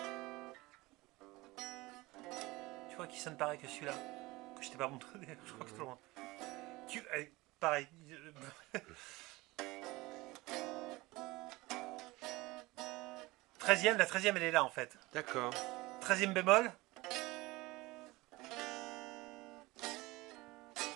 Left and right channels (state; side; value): quieter; left; 21.2 dB